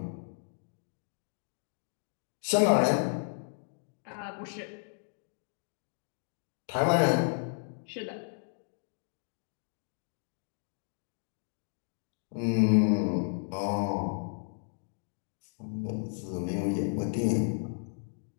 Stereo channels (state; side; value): silent; right; 56 dB below the other